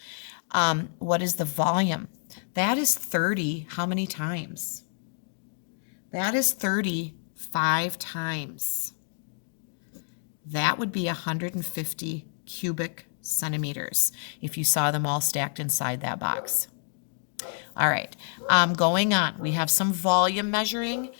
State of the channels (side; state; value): right; silent; 59 dB below the other